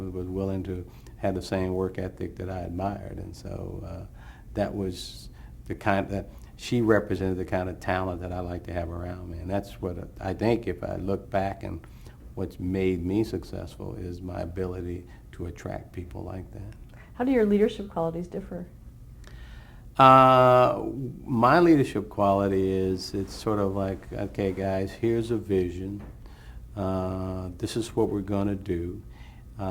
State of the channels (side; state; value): both; identical; correlation 1.00